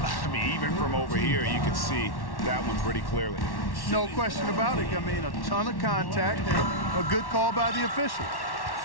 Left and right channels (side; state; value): right; late; 1.1 ms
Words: mean, even from over here, you can see that one pretty clearly. No question about it. I mean, a ton of contact and a good call by the official.